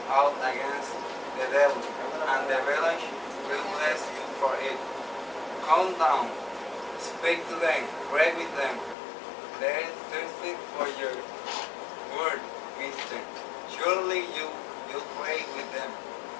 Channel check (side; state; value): right; drops out; at 9.0 s